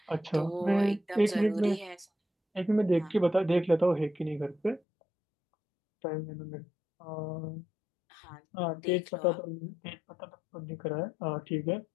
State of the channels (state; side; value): drops out; right; at 4.8 s